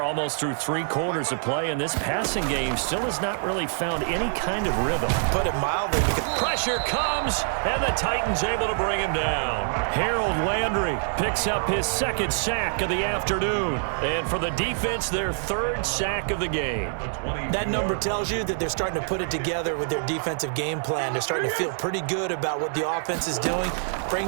almost through 3 quarters of play, and this passing game still has not really found any kind of rhythm. Put it mildly, because pressure comes, and the Titans able to bring him down. Harold Landry picks up his second sack of the afternoon. And for the defense, their third sack of the game. That number tells you that they're starting to put it together with their defensive game plan. They're starting to feel pretty good about what the offense is doing,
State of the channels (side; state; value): left; silent; digital silence